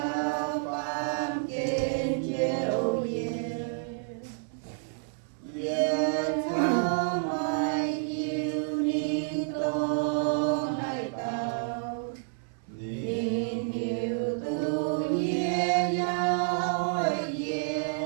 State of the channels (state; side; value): silent; left; 58 dB below the other